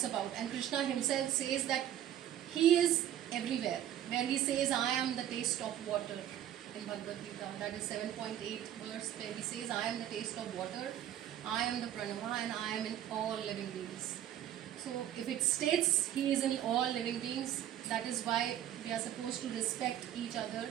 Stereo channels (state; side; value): quieter; left; 11.5 dB